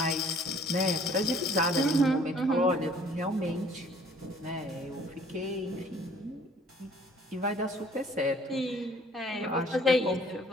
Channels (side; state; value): both; normal; correlation 0.56